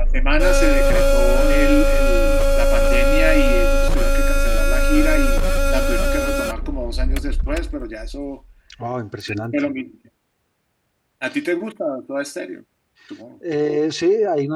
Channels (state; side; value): identical; both; correlation 1.00